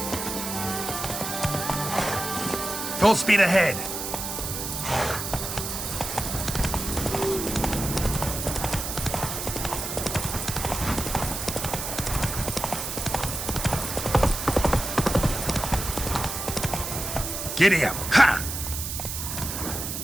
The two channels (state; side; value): noise; right; hiss, 5 dB below the sound